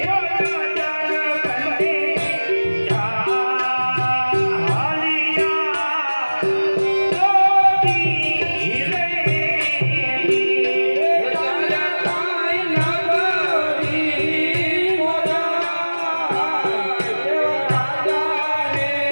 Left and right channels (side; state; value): both; inverted; correlation -1.00